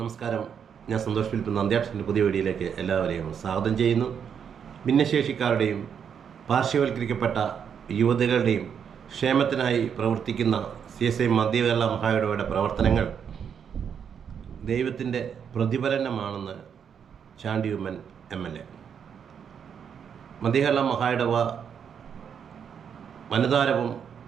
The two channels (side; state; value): left; quieter; 7.6 dB